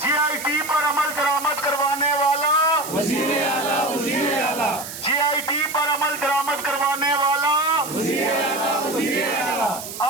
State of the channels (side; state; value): right; noise; hiss, 10 dB below the sound